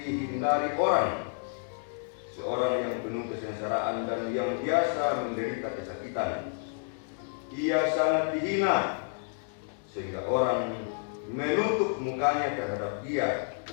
orang, seorang yang penuh kesengsaraan dan yang biasa menderita kesakitan. Ia sangat dihina sehingga orang menutup mukanya terhadap dia,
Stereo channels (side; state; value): right; silent; digital silence